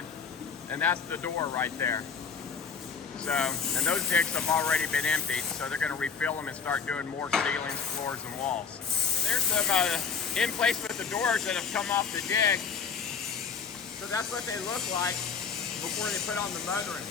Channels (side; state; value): right; quieter; 6.0 dB